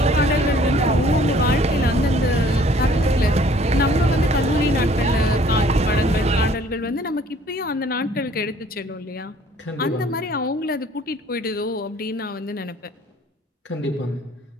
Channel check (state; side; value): normal; both; correlation 0.57